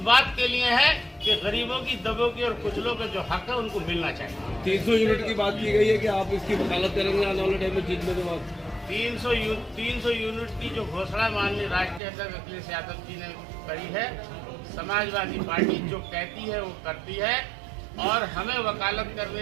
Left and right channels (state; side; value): drops out; left; at 12.0 s